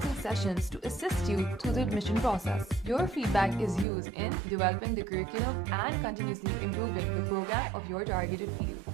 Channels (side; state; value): left; drops out; at 3.9 s